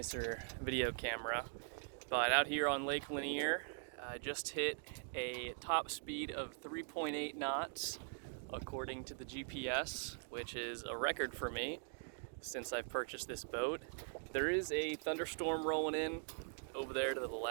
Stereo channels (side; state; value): left; silent; digital silence